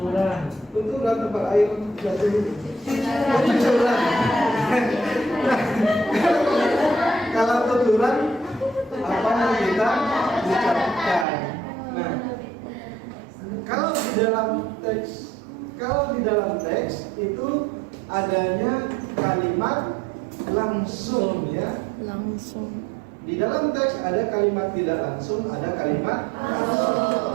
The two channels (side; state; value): left; drops out; at 11.2 s